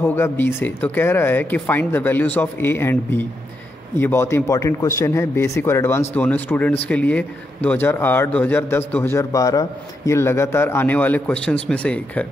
होगा b से, तो कह रहा है कि find the values of a and b। ये बहुत ही इंपॉर्टेंट क्वेश्चन है, बेसिक और एडवांस दोनों स्टूडेंट्स के लिए। 2008, 2010, 2012 ये लगातार आने वाले क्वेश्चंस में से एक है।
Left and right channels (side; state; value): both; normal; correlation 0.83